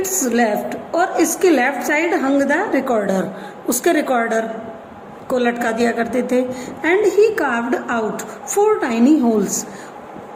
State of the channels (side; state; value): both; identical; correlation 1.00